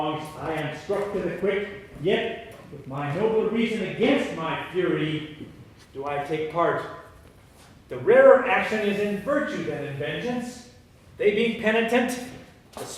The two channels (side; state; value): both; identical; correlation 1.00